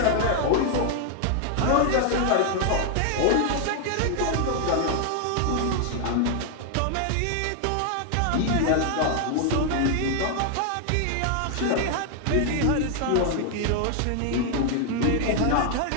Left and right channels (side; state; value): both; different; correlation 0.00